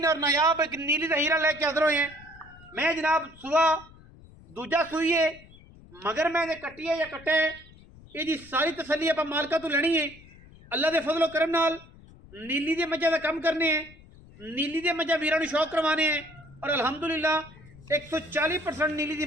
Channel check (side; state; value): left; noise; rumble, 22 dB below the sound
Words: और नायाब एक नीली दा हीरा लेके हाज़र होए हैं। मैं जनाब सुबह दूजा सूई है मगर मैं कट्टी है या कट्टे ये जी सारी तसली आप मालका तो लेनी है। अल्लाह के फजलो करम नाल नीली दे मझां का कम करने हैं, नीली दे मझां वीरां नूं शौक करवाने हैं और अलहमदुलिल्लाह 140% नीली